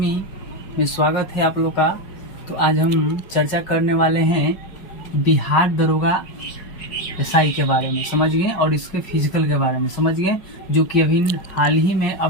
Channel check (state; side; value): late; right; 5.0 ms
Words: में स्वागत है आप लोग का। तो आज हम चर्चा करने वाले हैं बिहार दरोगा एसआई के बारे में, समझ गए, और इसके फिजिकल के बारे में समझ गए, जो कि अभी हाल ही में